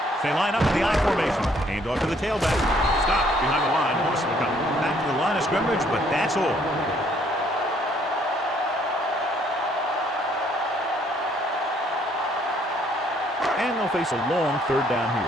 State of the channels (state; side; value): normal; both; correlation 0.65